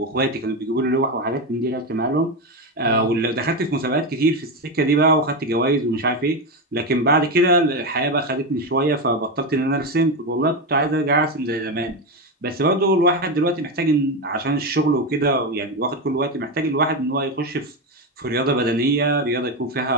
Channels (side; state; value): both; normal; correlation 0.13